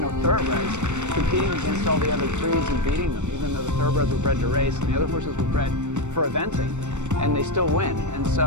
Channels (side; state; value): left; late; 0.84 ms